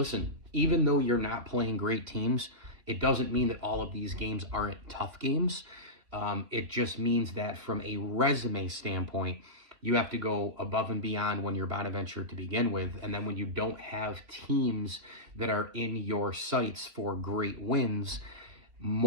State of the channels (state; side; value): late; left; 3.1 ms